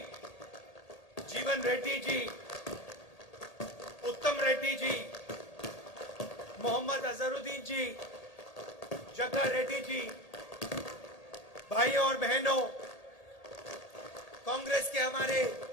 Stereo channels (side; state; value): right; late; 1.8 ms